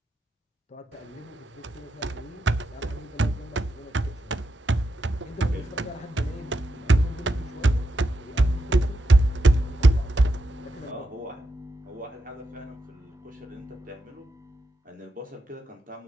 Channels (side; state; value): both; normal; correlation 0.86